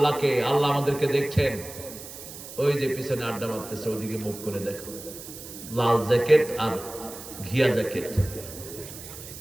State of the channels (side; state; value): right; noise; hiss, 13 dB below the sound